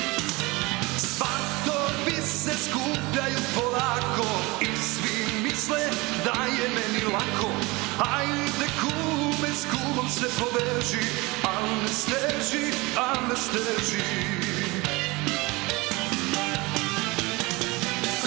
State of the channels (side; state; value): left; quieter; 23.7 dB